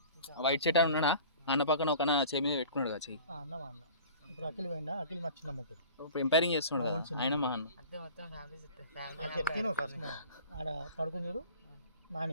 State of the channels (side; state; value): both; inverted; correlation -0.43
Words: వైట్ షర్ట్ అని ఉన్నాడా? అన్న పక్కన ఒక చేయి మీద పెట్టుకున్నాడు కదా చెయ్యి. అన్న మా అన్న ఇప్పుడు అఖిల్ పోయిందా? అఖిల్ మా చిన్న ముగ్గురు ఇప్పుడు ఎంపైరింగ్ చేస్తున్నాడు కదా, ఆయన మా అన్న. చెప్తాను ఫస్ట్ ఆడ పడుకుని చూడు.